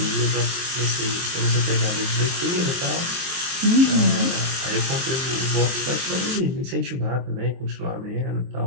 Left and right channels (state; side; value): late; left; 23 ms